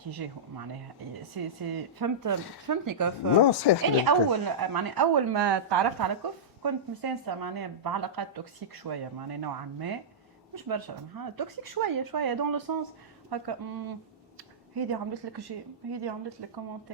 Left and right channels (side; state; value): both; normal; correlation -0.15